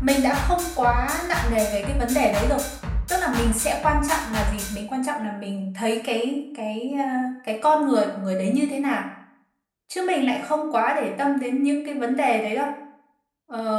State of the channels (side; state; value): both; identical; correlation 1.00